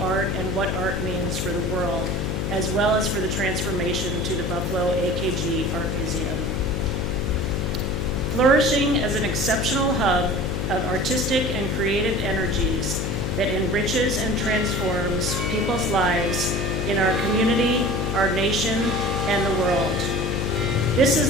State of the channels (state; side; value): noise; left; hum, 1 dB below the sound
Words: art and what art means for the world, as well as for the transformation to the Buffalo AKG Art Museum. flourishing as an exceptional hub of artistic and creative energies that enriches and transforms people's lives in our community, our nation, and the world. This